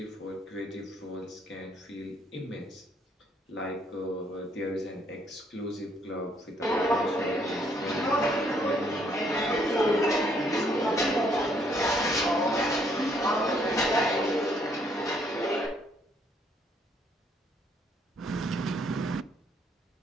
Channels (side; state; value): both; normal; correlation 0.68